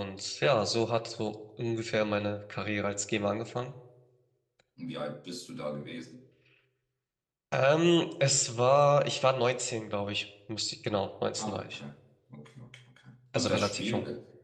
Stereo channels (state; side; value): identical; both; correlation 1.00